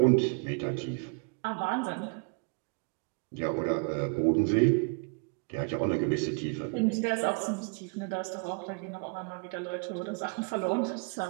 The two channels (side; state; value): left; quieter; 35.8 dB